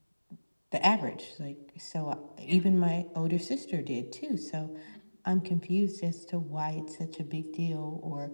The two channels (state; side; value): inverted; both; correlation -1.00